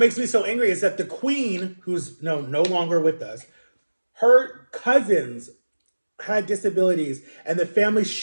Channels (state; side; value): inverted; both; correlation -1.00